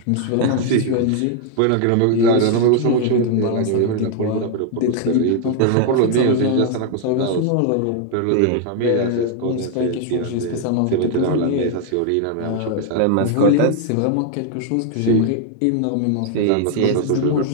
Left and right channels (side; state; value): both; different; correlation 0.00